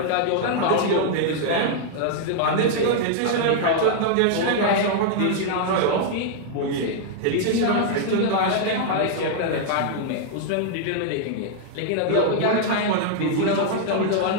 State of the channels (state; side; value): different; both; correlation -0.01